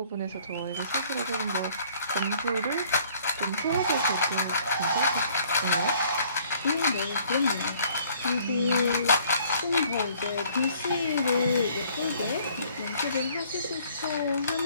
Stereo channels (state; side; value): inverted; both; correlation -0.59